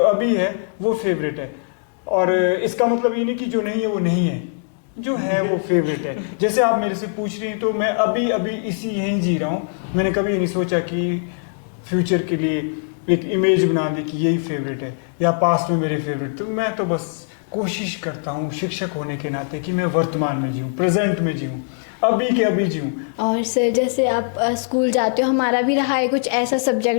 है, वो फेवरेट है। और इसका मतलब ये नहीं कि जो नहीं है वो नहीं है, जो है वो फेवरेट है। जैसे आप मेरे से पूछ रही हैं तो मैं अभी अभी इसी यहीं जी रहा हूँ। मैंने कभी ये नहीं सोचा कि फ्यूचर के लिए एक इमेज बना दी कि यही फेवरेट है या पास्ट में मेरे फेवरेट। तो मैं तो बस कोशिश करता हूँ शिक्षक होने के नाते कि मैं वर्तमान में जीऊँ, प्रेजेंट में जीऊँ, अभी के अभी जीऊँ। और सर, जैसे आप स्कूल जाते हो, हमारा भी रहा है कुछ ऐसा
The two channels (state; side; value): silent; right; digital silence